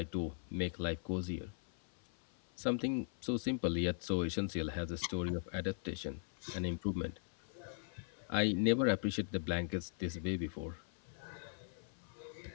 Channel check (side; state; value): right; silent; 51 dB below the other